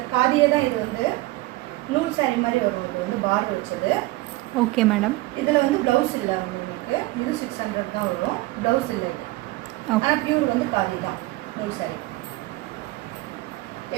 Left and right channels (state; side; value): quieter; left; 19.8 dB